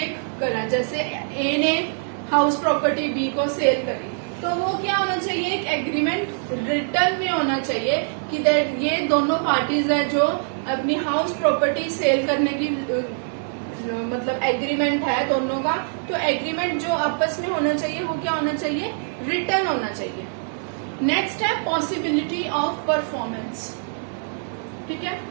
करा। जैसे ए ने हाउस प्रॉपर्टी बी को सेल करी तो वो क्या होना चाहिए, एक एग्रीमेंट रिटर्न में होना चाहिए कि दैट ये दोनों पार्टीज है जो अपनी हाउस प्रॉपर्टी सेल करने की मतलब एग्रीमेंट है दोनों का, तो एग्रीमेंट जो आपस में होना चाहिए वो क्या होना चाहिए, रिटर्न होना चाहिए। नेक्स्ट है पॉसिबिलिटी ऑफ परफॉर्मेंस। ठीक है,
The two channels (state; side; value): silent; left; digital silence